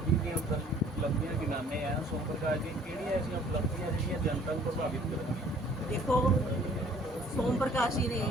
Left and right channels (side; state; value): both; normal; correlation 0.55